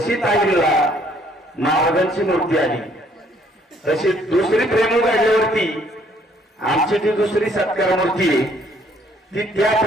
ताईला महाराजांची मूर्ती आली तशी दुसरी प्रेम काढल्यावरती आमची ती दुसरी सत्कार मूर्ती आहे ती त्या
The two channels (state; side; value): normal; both; correlation 0.64